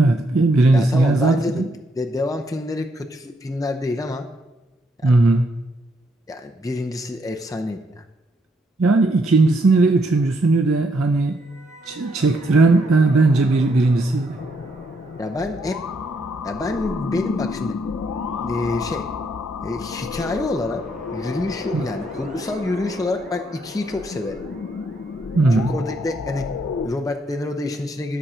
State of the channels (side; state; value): both; normal; correlation 0.74